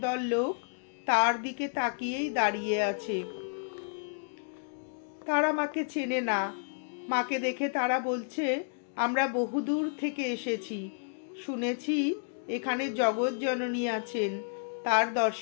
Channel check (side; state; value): right; silent; digital silence